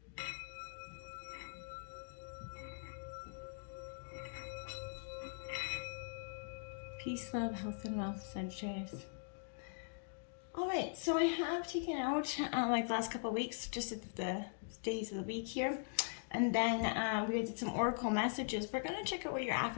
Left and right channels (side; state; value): right; silent; digital silence